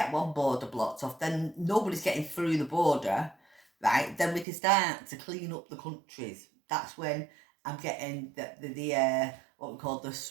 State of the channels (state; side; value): drops out; left; at 4.5 s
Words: one border blocked off, then nobody's getting through the border, right? Then we can start to clean up the countries. That's when I'm getting the what we call the